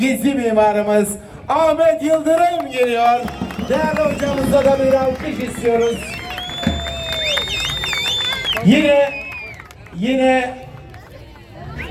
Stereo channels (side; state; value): both; identical; correlation 1.00